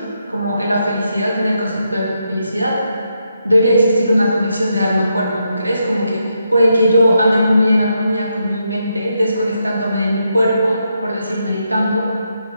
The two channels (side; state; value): both; inverted; correlation -0.81